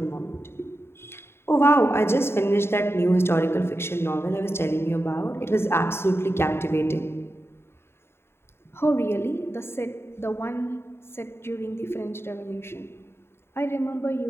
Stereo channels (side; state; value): right; late; 0.12 ms